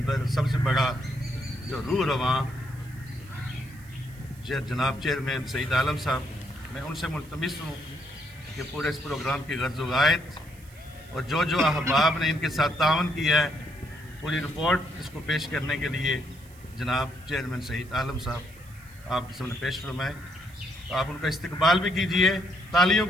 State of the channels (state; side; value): noise; right; hiss, 25 dB below the sound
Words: سب سے بڑا جو روح رواں جناب چیئرمین سعید عالم صاحب، میں ان سے ملتمس ہوں کہ پورے اس پروگرام کی غرض و غایت اور جو احباب نے ان کے ساتھ تعاون کیا ہے پوری رپورٹ اس کو پیش کرنے کے لیے जनाब चेयरमैन सईद आलम साहब आपके सामने पेश फरमाएँ, तो आप उनका इस्तकबाल भी कीजिए तालियों